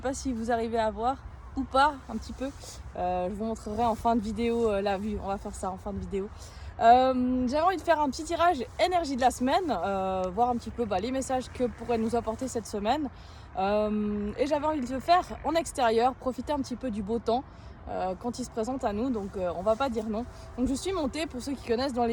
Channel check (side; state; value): both; identical; correlation 1.00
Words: si vous arrivez à voir ou pas, un petit peu. Je vous montrerai en fin de vidéo la vue. On va faire ça en fin de vidéo. J'avais envie de faire un petit tirage énergie de la semaine, voir un petit peu les messages que pourrait nous apporter cette semaine. Et j'avais envie de le faire en extérieur, profiter un petit peu du beau temps. Quand il se présente à nous, donc on va pas dire non. Donc je suis montée, pour ceux qui connaissent, dans